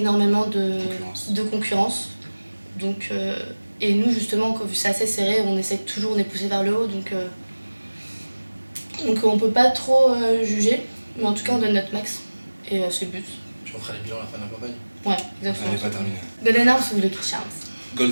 de concurrence. Donc, et nous, justement, vu que c'est assez serré, on essaie toujours, on est poussé vers le haut. Donc on peut pas trop juger, mais en tout cas, on donne notre max. Et c'est le but. Tu feras les bilans à la fin de la campagne. Ouais, Elle n'est exactement. pas terminée. Golden Arms ou Lucky Charms?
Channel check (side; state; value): both; inverted; correlation -1.00